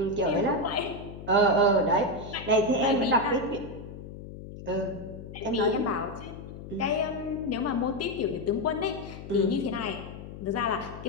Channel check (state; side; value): noise; left; hum, 12 dB below the sound